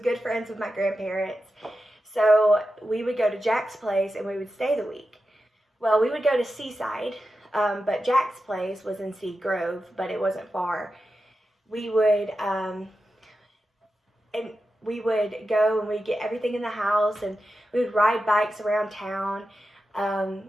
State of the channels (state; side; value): normal; both; correlation 0.91